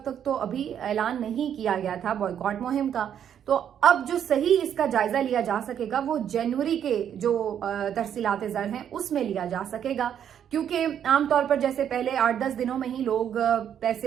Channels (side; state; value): left; quieter; 9.2 dB